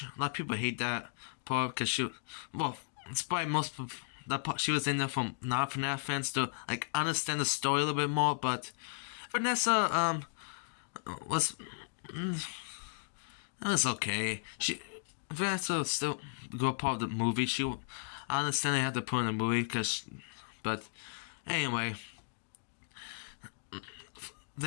A lot of people hate that part because it's probably most of that part she was in there from non-FNAF fans to understand the story a little bit more. But Vanessa was it was okay. Vanessa was still a good part of the movie. I understand they had to put in the movie but anyway.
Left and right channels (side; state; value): right; silent; digital silence